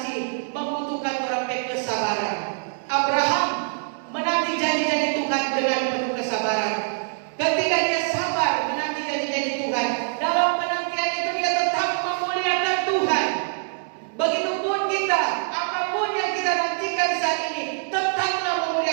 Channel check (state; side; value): silent; left; digital silence